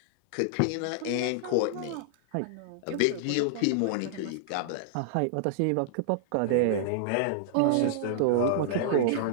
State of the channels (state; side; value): different; both; correlation -0.01